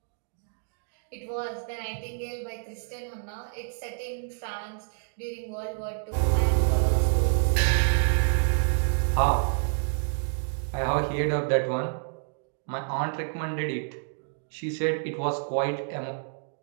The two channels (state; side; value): silent; left; digital silence